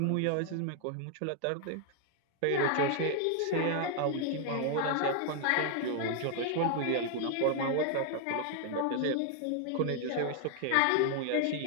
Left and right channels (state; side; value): different; both; correlation 0.00